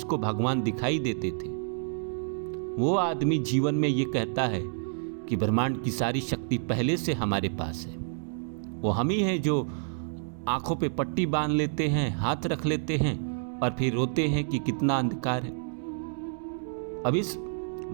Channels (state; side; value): silent; left; digital silence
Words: भगवान दिखाई देते थे, वो आदमी जीवन में ये कहता है कि ब्रह्मांड की सारी शक्ति पहले से हमारे पास है। वो हम ही हैं जो आंखों पे पट्टी बांध लेते हैं, हाथ रख लेते हैं और फिर रोते हैं कि कितना अंधकार है। अब इस